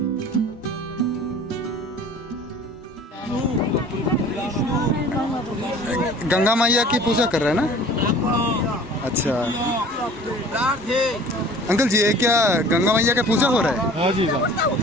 गंगा मैया की पूजा कर रहे हैं ना? अच्छा अंकल जी, ये क्या गंगा मैया का पूजा हो रहा है? हाँ जी सर।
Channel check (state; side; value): normal; both; correlation 0.46